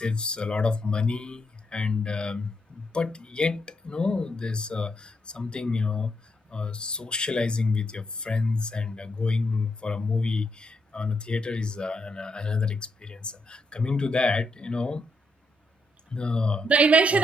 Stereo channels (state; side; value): normal; both; correlation 0.78